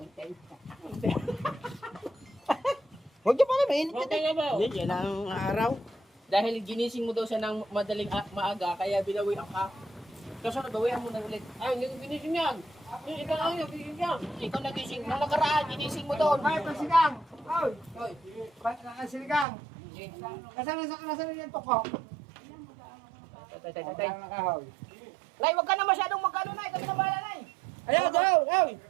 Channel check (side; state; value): left; drops out; at 19.5 s